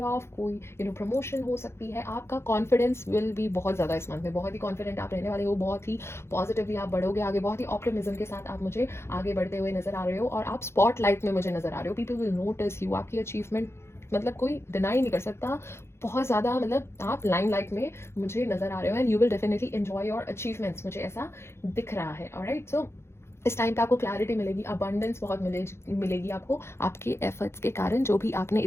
ऑफ, कोई प्रमोशन हो सकती है, आपका कॉन्फिडेंस विल भी बहुत ज़्यादा इस मंथ में, बहुत ही कॉन्फिडेंट आप रहने वाले हो, बहुत ही पॉजिटिवली आप बढ़ोगे आगे, बहुत ही ऑप्टिमिज्म के साथ आप मुझे आगे बढ़ते हुए नजर आ रहे हो, और आप स्पॉटलाइट में मुझे नजर आ रहे हो, पीपल विल नोटिस यू, आपकी अचीवमेंट मतलब कोई डिनाई नहीं कर सकता, बहुत ज़्यादा, मतलब आप लाइमलाइट में मुझे नजर आ रहे हो, and you will definitely enjoy your achievements, मुझे ऐसा दिख रहा है। ऑलराइट, सो इस टाइम पे आपको क्लैरिटी मिलेगी, अबंडेंस बहुत मिलेगी आपको, आपके एफर्ट्स के कारण, जो भी आपने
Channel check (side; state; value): right; late; 0.12 ms